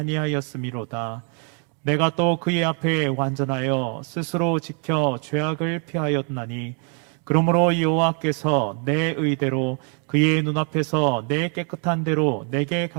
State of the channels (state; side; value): quieter; left; 36.7 dB